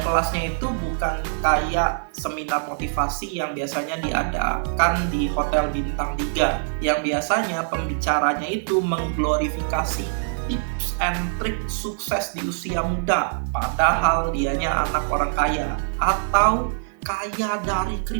kelasnya itu bukan kayak seminar motivasi yang biasanya diadakan di hotel bintang 3, yang biasanya pembicaranya itu mengglorifikasi tips and trik sukses di usia muda, padahal dianya anak orang kaya, atau kaya dari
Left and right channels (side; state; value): left; silent; digital silence